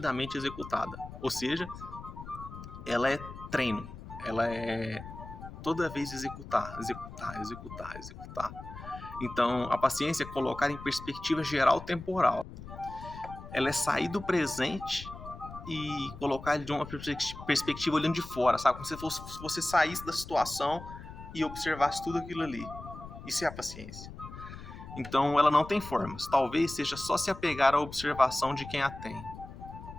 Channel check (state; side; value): noise; left; rumble, 13 dB below the sound